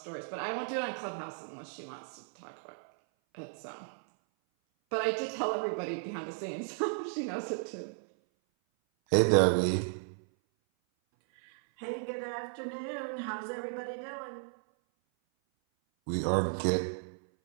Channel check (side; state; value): left; silent; 55 dB below the other